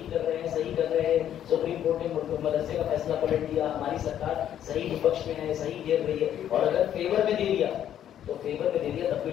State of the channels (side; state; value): right; quieter; 10.5 dB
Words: कर रहे हैं, सही कर रहे हैं, सुप्रीम कोर्ट ने मदरसे का फैसला पलट दिया, हमारी सरकार सही विपक्ष में है, सही घेर रही है। और अगर फेवर में दे दिया तो फेवर में दे दिया तब भी